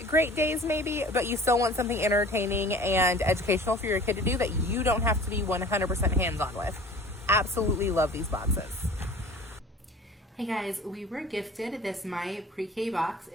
great days maybe, but you still want something entertaining and educational for your kid to do that you don't have to be 100% hands-on with. Absolutely love these boxes. Hey guys, we were gifted this My Pre-K box.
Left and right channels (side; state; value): both; normal; correlation 0.44